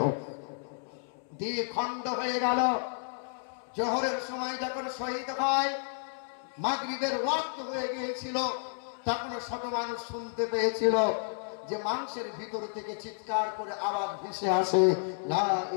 দ্বিখণ্ড হয়ে গেল। জোহরের সময় যখন শহীদ হয়, মাগরিবের ওয়াক্ত হয়ে গিয়েছিল, তখন শত মানুষ শুনতে পেয়েছিল যে মাংসের ভিতর থেকে চিৎকার করে আওয়াজ ভেসে আসে, লা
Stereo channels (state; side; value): silent; right; 57 dB below the other